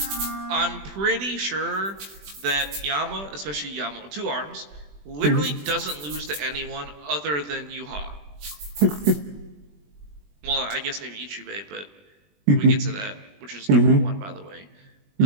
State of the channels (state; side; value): late; left; 20 ms